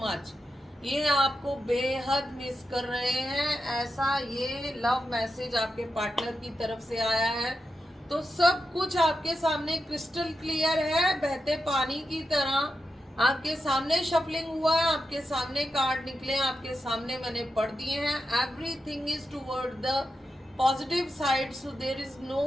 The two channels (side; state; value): both; normal; correlation 0.88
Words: much. ये आपको बेहद मिस कर रहे हैं, ऐसा ये लव मैसेज आपके पार्टनर की तरफ से आया है। तो सब कुछ आपके सामने क्रिस्टल क्लियर है, बहते पानी की तरह आपके सामने शफलिंग हुआ है, आपके सामने कार्ड निकले, आपके सामने मैंने पढ़ दिए हैं। Everything is toward the positive side, so there is